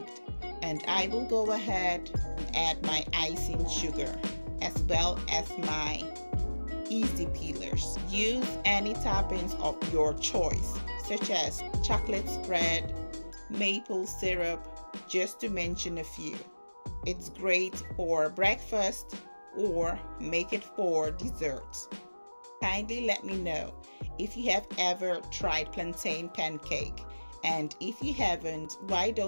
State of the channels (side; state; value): both; inverted; correlation -1.00